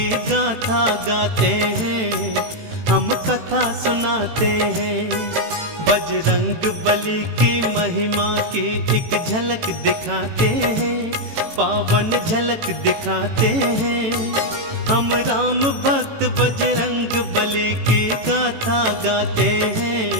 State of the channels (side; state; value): left; late; 18 ms